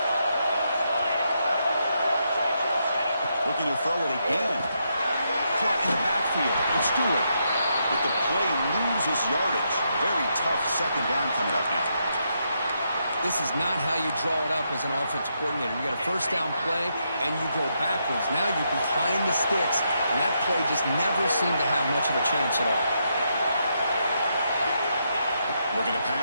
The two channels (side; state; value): both; inverted; correlation -0.80